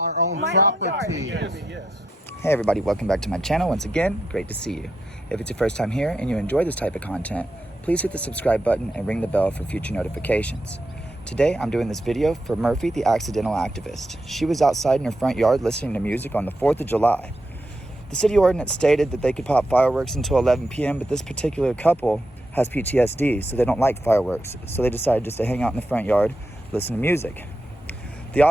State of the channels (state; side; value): normal; both; correlation 0.84